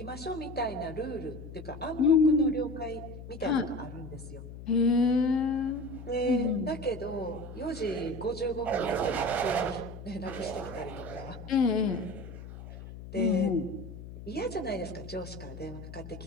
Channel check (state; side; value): noise; left; hum, 12 dB below the sound